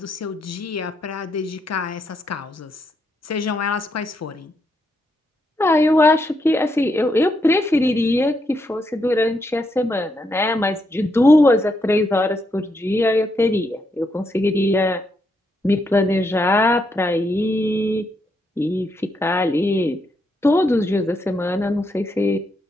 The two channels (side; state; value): both; normal; correlation 0.79